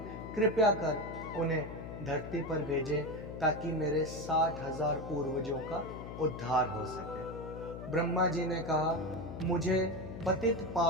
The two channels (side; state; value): left; noise; hum, 9 dB below the sound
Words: कृपया कर उन्हें धरती पर भेजें ताकि मेरे 60,000 पूर्वजों का उद्धार हो सके। ब्रह्मा जी ने कहा, मुझे पतित